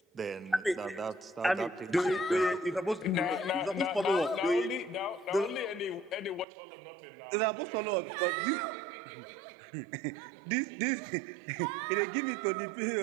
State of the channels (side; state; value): left; drops out; at 6.5 s